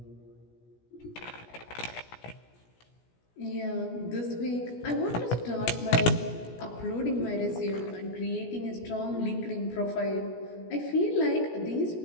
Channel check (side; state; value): right; late; 17 ms